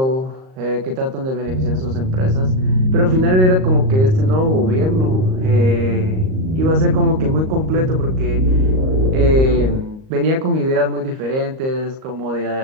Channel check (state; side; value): late; left; 38 ms